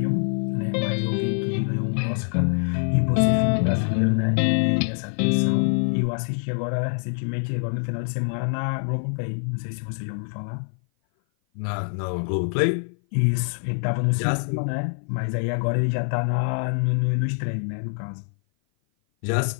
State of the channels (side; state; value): right; silent; 56 dB below the other